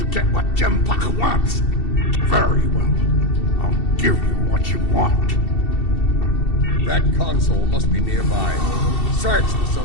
get what Jempak wants. Very well. I'll give you what you want. That console must be nearby. Search the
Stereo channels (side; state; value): right; late; 2.7 ms